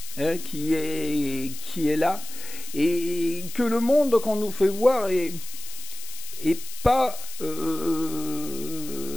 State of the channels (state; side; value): noise; left; hiss, 12 dB below the sound